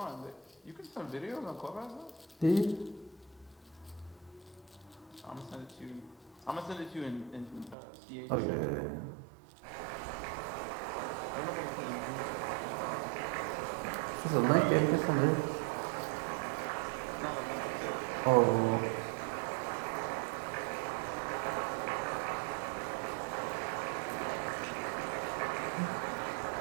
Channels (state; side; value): drops out; left; at 7.8 s